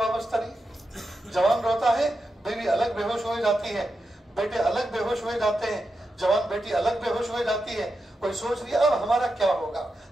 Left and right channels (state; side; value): normal; both; correlation 0.88